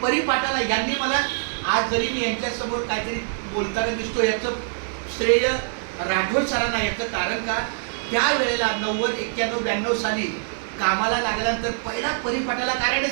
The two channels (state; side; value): silent; left; 60 dB below the other